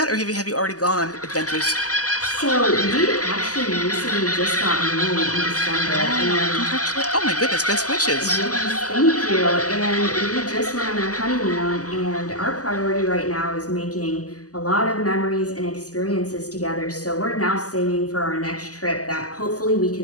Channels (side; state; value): right; late; 0.67 ms